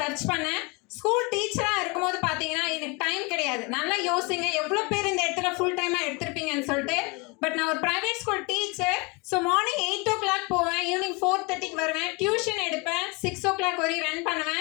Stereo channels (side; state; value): right; quieter; 28.8 dB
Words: சர்ச் பண்ணேன். ஸ்கூல் டீச்சராக இருக்கும்போது பார்த்தீங்கன்னா எனக்கு டைம் கிடையாது. நல்லா யோசிங்க எவ்வளோ பேர் இந்த இடத்துல ஃபுல் டைமாக எடுத்திருப்பீங்கன்னு சொல்லிட்டு. பட் நான் ஒரு private school teacher. So morning 8 o'clock போவேன், ஈவினிங் 4:30 வருவேன், டியூஷன் எடுப்பேன், 6 o'clock வரையும் ரன்